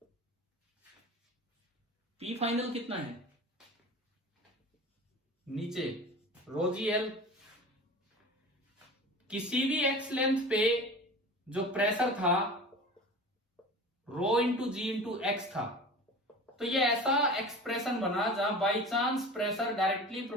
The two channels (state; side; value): normal; both; correlation 0.36